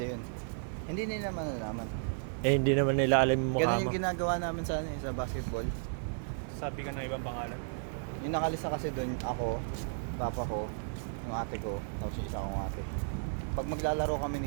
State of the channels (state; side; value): silent; left; 55 dB below the other